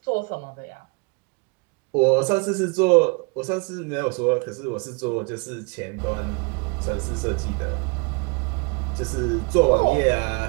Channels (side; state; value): left; quieter; 31.7 dB